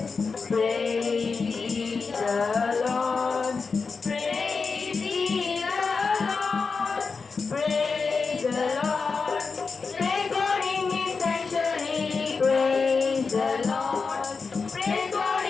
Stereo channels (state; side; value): quieter; right; 4.8 dB